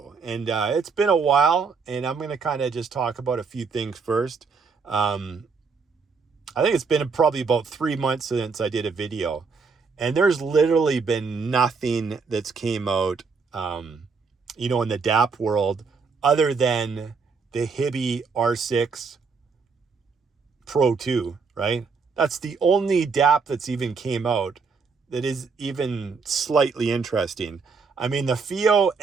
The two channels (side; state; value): left; quieter; 4.9 dB